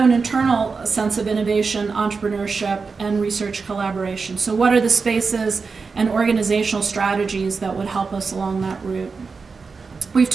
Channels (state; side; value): quieter; left; 4.7 dB